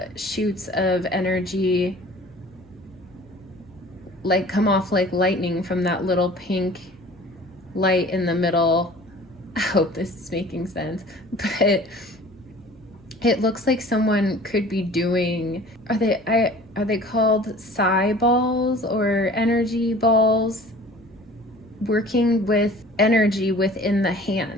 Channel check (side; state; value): both; normal; correlation 0.46